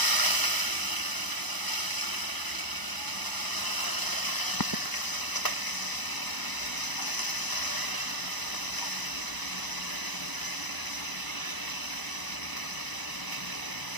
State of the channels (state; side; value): late; right; 1.0 ms